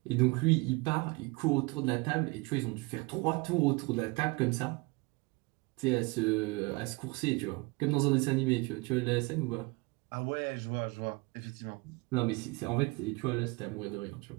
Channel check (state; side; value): quieter; left; 26.0 dB